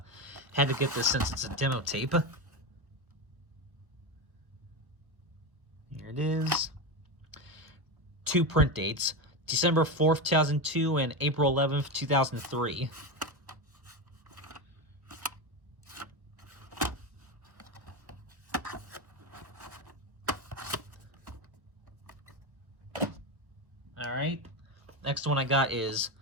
to get this since it's a demo tape. Here it is. Two print dates, December 4th, 2002 and April 11th, 2003. Alright, next one I got is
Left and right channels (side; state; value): left; late; 1.2 ms